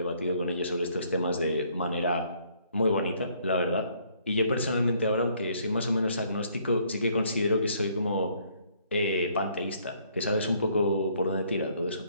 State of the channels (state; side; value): inverted; both; correlation -0.66